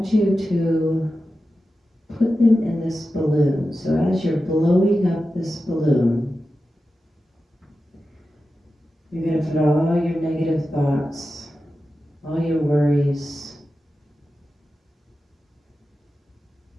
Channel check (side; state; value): both; normal; correlation 0.92